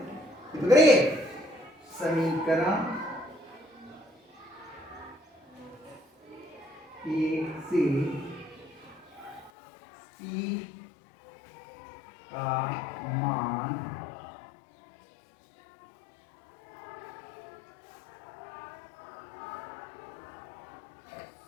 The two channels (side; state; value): right; drops out; at 9.5 s